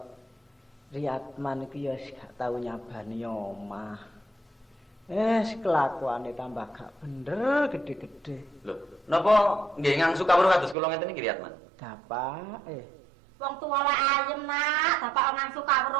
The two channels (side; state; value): left; drops out; at 10.8 s